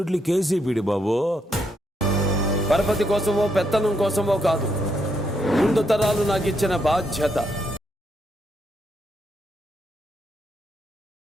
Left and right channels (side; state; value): both; normal; correlation 0.78